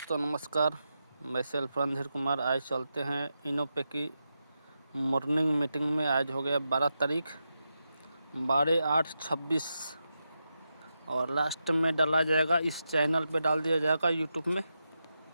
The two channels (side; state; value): both; inverted; correlation -0.88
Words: नमस्कार, मैं सेल्फ रणधीर कुमार। आज चलते हैं इनोपे की मॉर्निंग मीटिंग में। आज हो गया 12 तारीख 12/8/26 और लास्ट में डाला जाएगा, इस चैनल पे डाल दिया जाएगा यूट्यूब में।